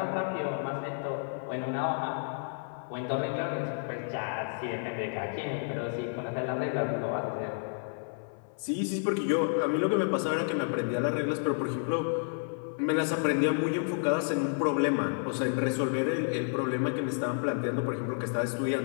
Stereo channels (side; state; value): right; silent; 56 dB below the other